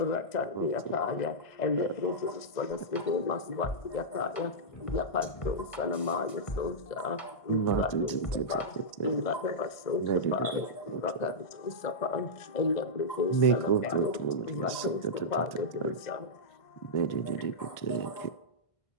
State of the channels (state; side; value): late; right; 1.5 ms